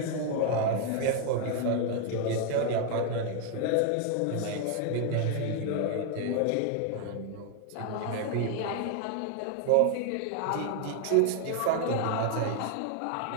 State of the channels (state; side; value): different; both; correlation 0.01